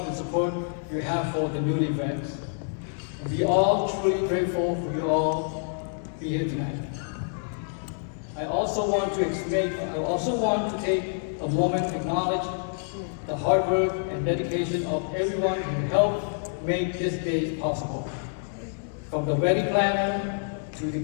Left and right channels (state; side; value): silent; right; digital silence